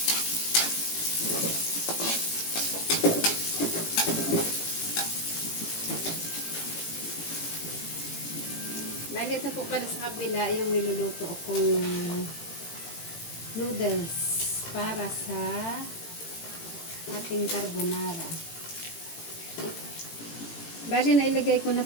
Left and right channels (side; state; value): right; late; 18 ms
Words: Bali, ito po pala sa kabila yung niluluto kong noodles para sa ating carbonara. Bali, nailagay ko na